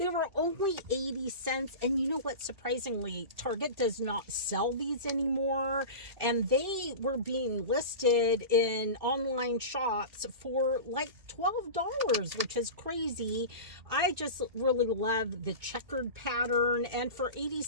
were only 80 cents. And you know what? Surprisingly, Target does not sell these anymore. And they were being listed in online shops for like $12, which is crazy. I just really love the checkered pattern and for 80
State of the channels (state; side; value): late; left; 2.5 ms